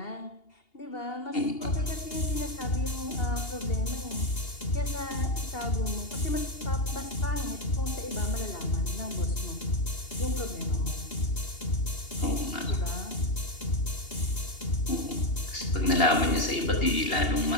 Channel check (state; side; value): late; right; 2.8 ms